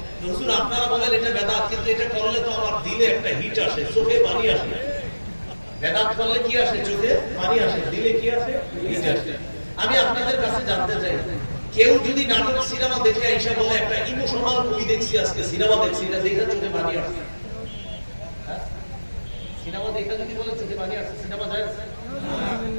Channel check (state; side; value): inverted; both; correlation -1.00